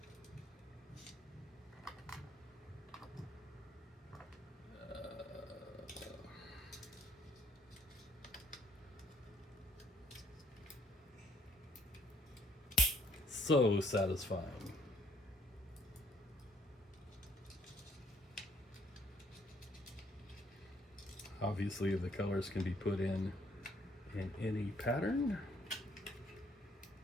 So satisfying. Obviously, the colors can be put in any pattern.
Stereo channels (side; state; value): both; normal; correlation 0.65